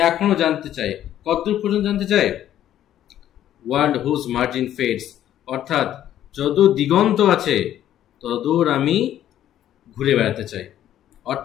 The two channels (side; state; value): right; quieter; 11.7 dB